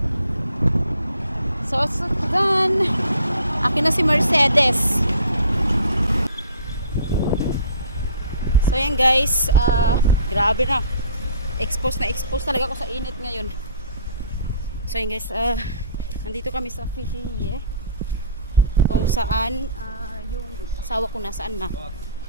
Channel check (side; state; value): both; inverted; correlation -0.51